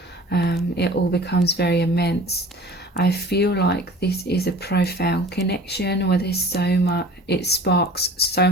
It all becomes very immense. I feel like this is a profound connection where there's so much, it sparks so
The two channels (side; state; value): both; normal; correlation 0.43